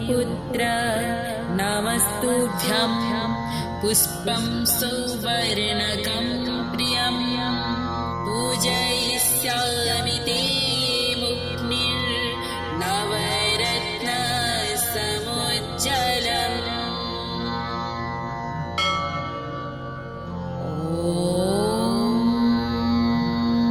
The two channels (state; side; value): identical; both; correlation 1.00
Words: नमस्तुभ्यं पुष्पं सौवर्णकं प्रियं पूजयिष्यामि ते मुक्निर्नवरत्नसमुज्ज्वलम्।